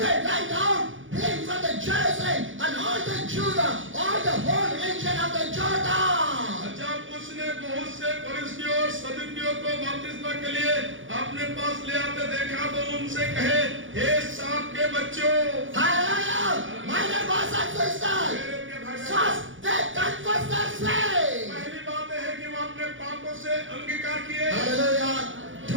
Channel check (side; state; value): left; late; 0.57 ms